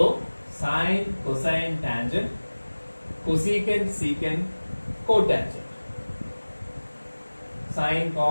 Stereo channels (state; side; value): inverted; both; correlation -1.00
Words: sine, cosine, tangent, cosecant, secant, cotangent. Sine,